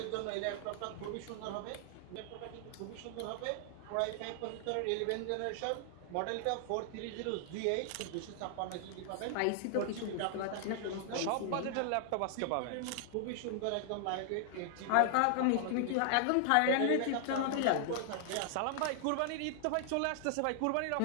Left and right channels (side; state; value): both; different; correlation 0.00